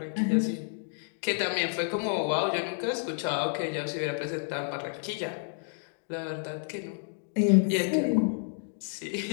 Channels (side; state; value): right; silent; digital silence